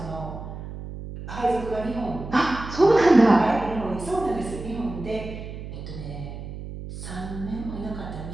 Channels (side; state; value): right; noise; hum, 10 dB below the sound